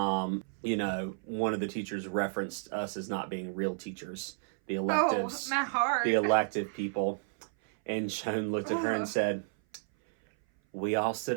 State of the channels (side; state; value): left; silent; 57 dB below the other